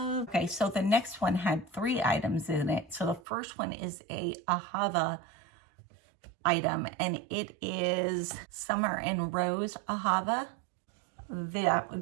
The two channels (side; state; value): left; drops out; at 3.2 s